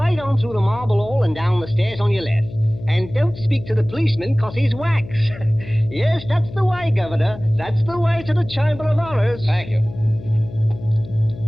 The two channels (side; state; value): left; noise; hum, 14 dB below the sound